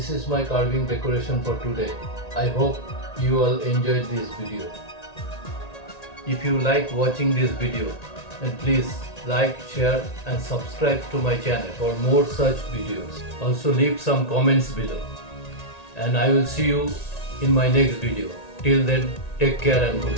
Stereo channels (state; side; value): late; right; 1.9 ms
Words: is my carving decoration for today. I hope you all enjoyed this video. If you like watching this video, then please like, share and subscribe to my channel for more such videos. Also leave some comments below. And I will see you in my next video. Till then, take care and